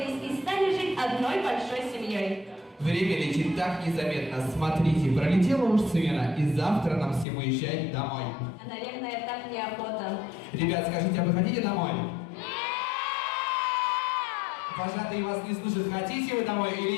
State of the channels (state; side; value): drops out; right; at 7.2 s